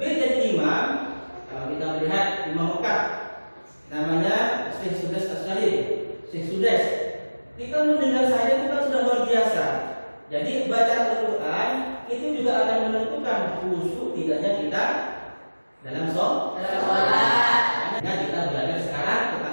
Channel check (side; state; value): both; inverted; correlation -1.00